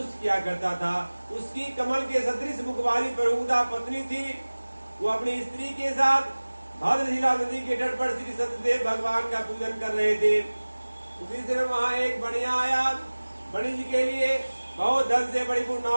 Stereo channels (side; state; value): both; inverted; correlation -1.00